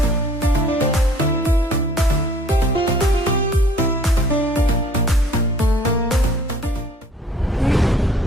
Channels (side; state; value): both; normal; correlation 0.54